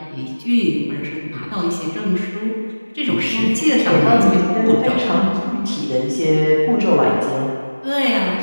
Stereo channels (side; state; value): both; inverted; correlation -1.00